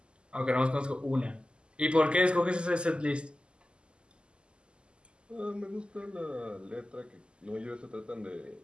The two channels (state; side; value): late; left; 0.050 ms